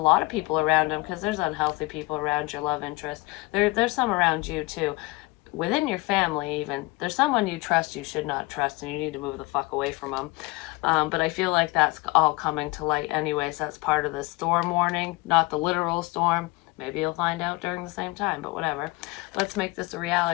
of people around them, because there's unhealthy people around your love interest. There's some around you too. Within your family even. There's someone you trust you should not trust, and you need to move the fuck away from them. But I feel like that's all coming to light anyways. That's part of the storm warning, not the literal storm. Maybe you'll find out during the same time, but whatever. Let's make this a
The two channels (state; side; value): quieter; right; 23.4 dB